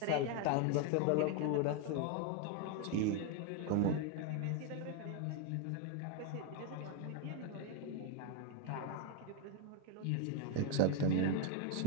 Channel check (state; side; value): different; both; correlation 0.01